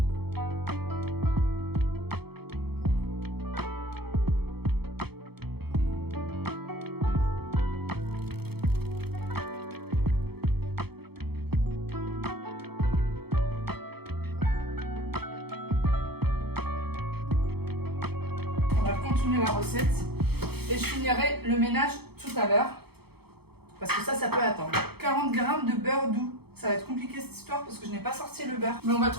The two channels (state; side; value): late; left; 0.96 ms